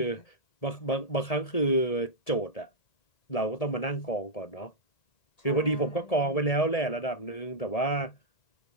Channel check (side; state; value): right; late; 1.7 ms